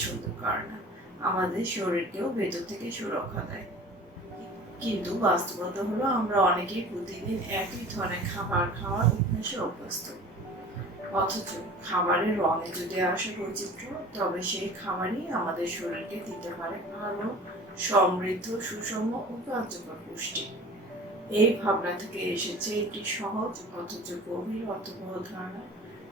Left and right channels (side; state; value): both; normal; correlation 0.42